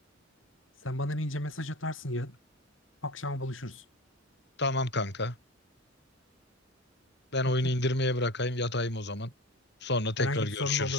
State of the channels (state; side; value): normal; both; correlation 0.30